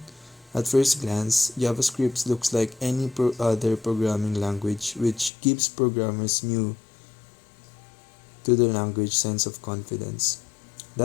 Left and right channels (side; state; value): right; drops out; at 5.3 s